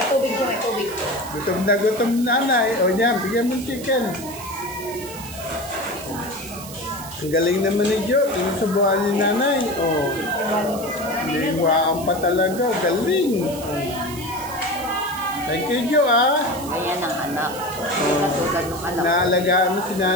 tubig siya, may tubig. Gutom na nanay. O yan, bigyan mo chicken. Ang galing naman ni Jo. Sinusubukan ni nanay. O. Liwaan pa talaga. Galing. Thank you, Jo, ah. Ayan ang anak. Katulad ng anak. Naalagaan mo si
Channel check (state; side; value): noise; right; hiss, 14 dB below the sound